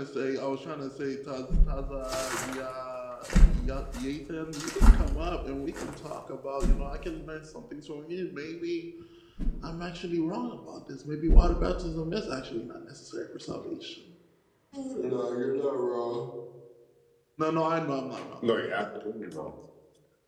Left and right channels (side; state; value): both; identical; correlation 1.00